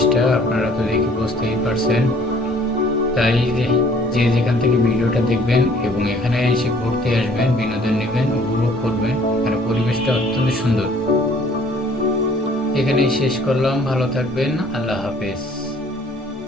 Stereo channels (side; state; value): both; normal; correlation 0.57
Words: আপনারা তো দেখে বুঝতেই পারছেন। তাই যে যেখান থেকে ভিডিওটা দেখবেন এবং এখানে এসে ঘুরতে আসবেন, বিনোদন নেবেন, উপভোগ করবেন। এখানে পরিবেশটা অত্যন্ত সুন্দর। এখানেই শেষ করলাম। ভালো থাকবেন। আল্লাহ হাফেজ।